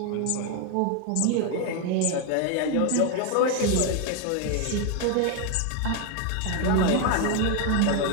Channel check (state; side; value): different; both; correlation 0.01